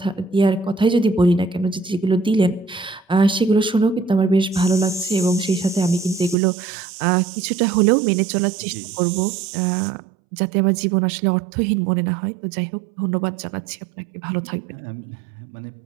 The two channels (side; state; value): left; drops out; at 6.4 s